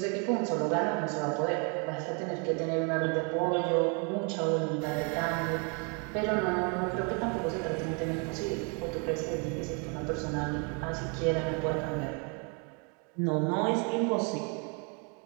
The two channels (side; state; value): left; quieter; 35.7 dB